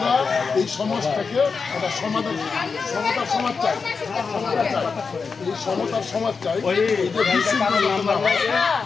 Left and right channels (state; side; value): quieter; right; 5.1 dB